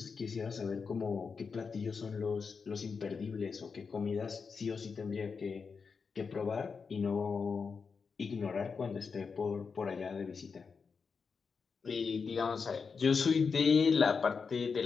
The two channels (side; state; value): right; quieter; 5.4 dB